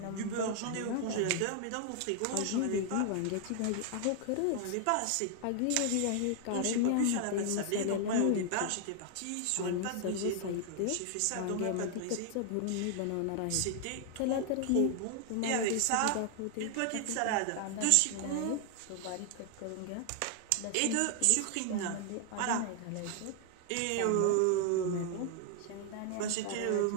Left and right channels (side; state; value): both; different; correlation 0.00